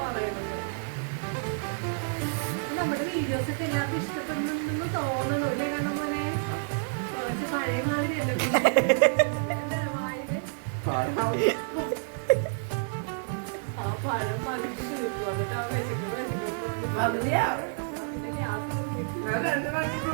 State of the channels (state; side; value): silent; left; 59 dB below the other